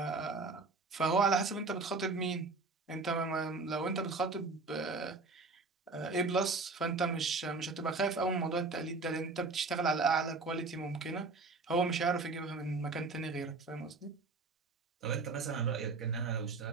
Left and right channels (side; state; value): left; quieter; 3.8 dB